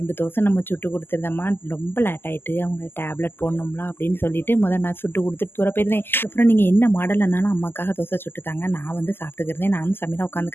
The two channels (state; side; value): late; right; 0.10 ms